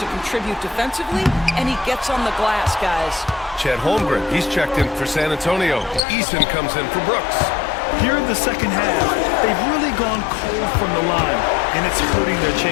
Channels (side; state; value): right; drops out; at 6.0 s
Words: contribute defensively, and he gets on the glass, guys. Chet Holmgren, he's checked in for San Antonio. Eason comes in for Brooks. Here in the second half, they've really gone cold from the line, and it's hurting their